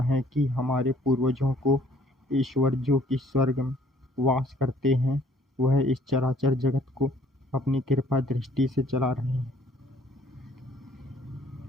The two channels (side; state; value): both; normal; correlation 0.59